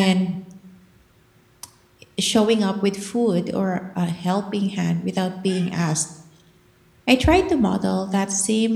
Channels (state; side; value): identical; both; correlation 1.00